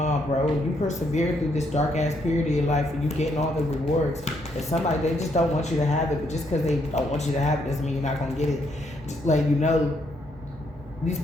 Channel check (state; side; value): normal; both; correlation 0.74